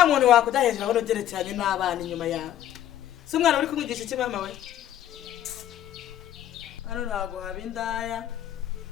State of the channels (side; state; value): right; quieter; 11.7 dB